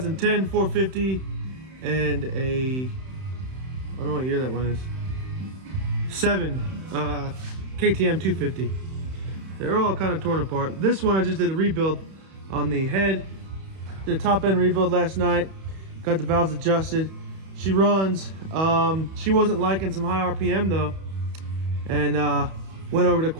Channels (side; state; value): left; late; 31 ms